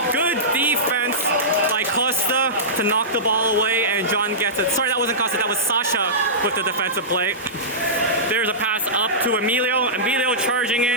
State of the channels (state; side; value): normal; both; correlation -0.18